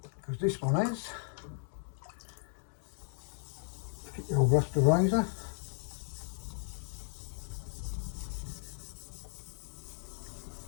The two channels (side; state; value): right; silent; digital silence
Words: this one is. Get your old rusty razor.